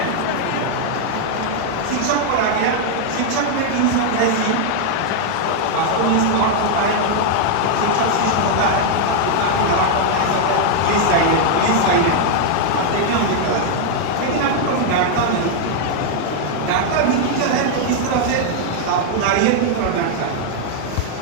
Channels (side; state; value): both; different; correlation 0.00